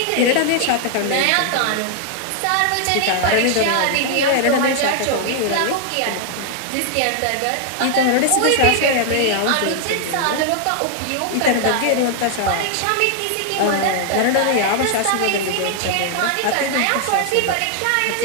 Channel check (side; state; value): both; different; correlation 0.00